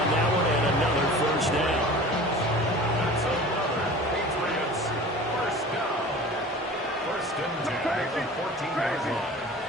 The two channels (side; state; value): both; normal; correlation 0.40